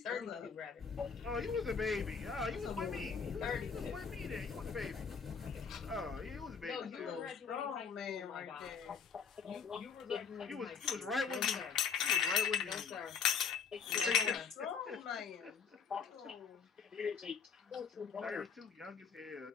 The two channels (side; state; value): right; quieter; 6.3 dB